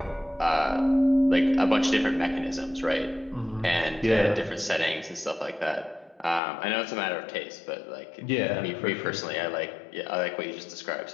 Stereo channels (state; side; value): drops out; right; at 6.4 s